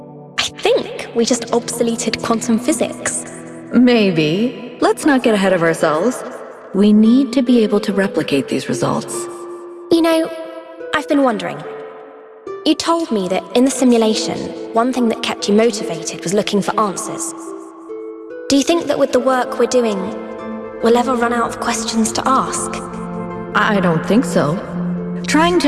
I think we just obsoleted quantum physics. Maybe. Let's not get ahead of ourselves. We need to be able to replicate these results. You know, I've been wondering. You told me that in the simulation, one thing that kept you motivated was looking for answers. Do you think that with the work we're doing, we'll ever run out of questions to ask? I don't think so. Trying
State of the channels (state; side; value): identical; both; correlation 1.00